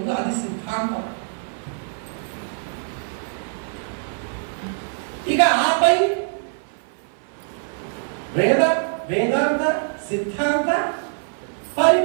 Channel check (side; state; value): left; silent; 56 dB below the other